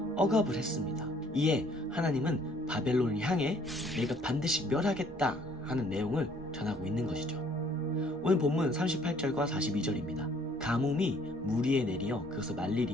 억압을 했습니다. 이에 하나님은 바벨론을 향해 내가 반드시 멸하겠다 하는 내용을 전하고 있는 것이죠. 오늘 본문 38절과 42절입니다. 가뭄이 물 위에 내리어 그것을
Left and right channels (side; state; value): both; normal; correlation 0.60